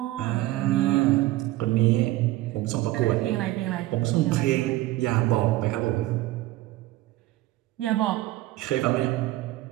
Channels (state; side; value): quieter; left; 16.9 dB